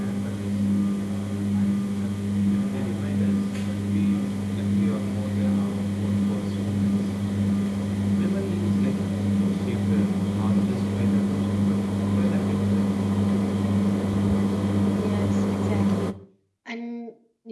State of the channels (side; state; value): both; identical; correlation 1.00